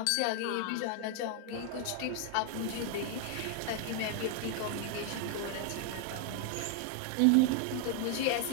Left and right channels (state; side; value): different; both; correlation 0.00